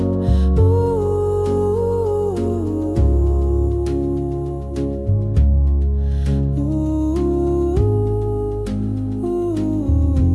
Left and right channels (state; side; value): identical; both; correlation 1.00